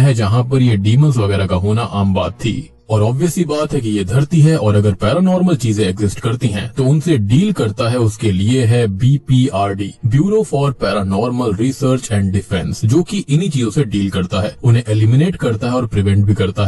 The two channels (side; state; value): both; identical; correlation 1.00